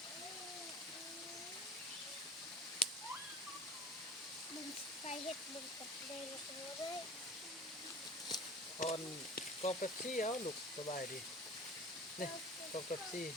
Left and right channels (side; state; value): both; normal; correlation 0.38